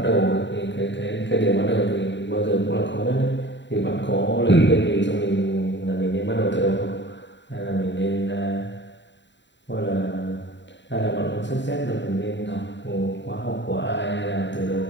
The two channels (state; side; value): late; right; 0.52 ms